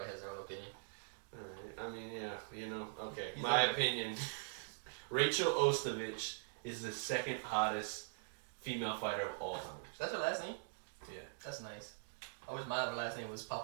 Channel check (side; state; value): left; silent; digital silence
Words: has their own opinion. Alright, I mean, yeah, you know, okay. He's My okay. opinion, Rachel Ostovich is the second hottest female fighter of all time. That's her last name? Yeah. That's nice. I wish my other last name was